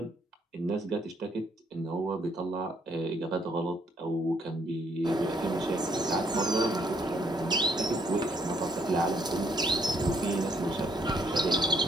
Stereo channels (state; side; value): normal; both; correlation 0.68